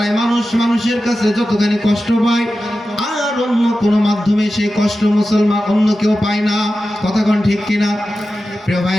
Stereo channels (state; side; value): normal; both; correlation 0.93